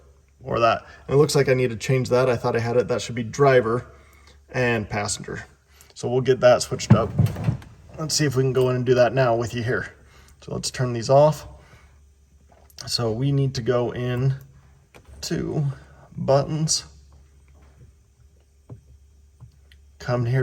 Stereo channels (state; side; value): identical; both; correlation 1.00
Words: or that. And it looks like I need to change that. I thought I had it. That should be driver and passenger. So we'll get that switched up. Let's see if we can go in and do that now with you here. So let's turn these off. So we need to go in to buttons, come